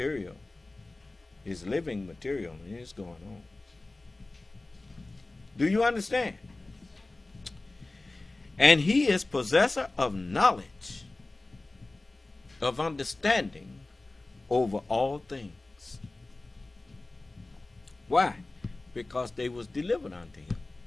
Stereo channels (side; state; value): right; quieter; 3.0 dB